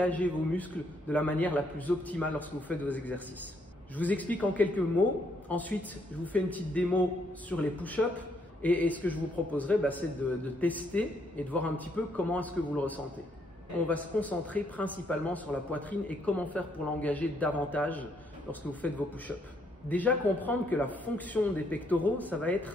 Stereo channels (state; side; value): normal; both; correlation 0.72